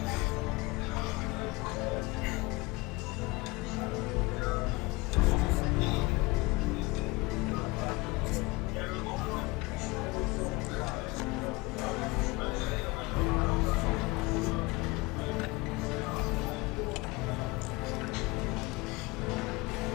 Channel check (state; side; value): quieter; right; 23.2 dB